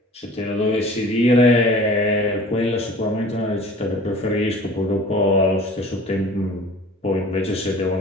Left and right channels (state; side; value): normal; both; correlation 0.45